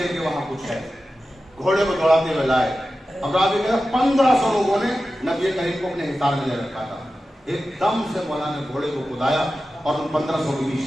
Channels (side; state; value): both; normal; correlation 0.93